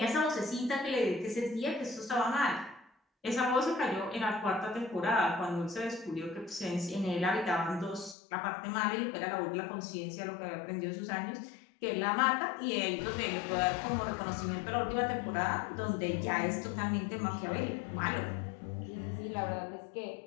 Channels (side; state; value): right; drops out; at 8.2 s